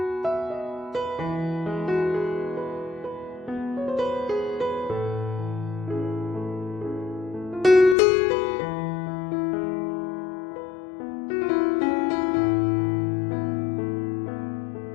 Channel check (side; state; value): right; drops out; at 8.0 s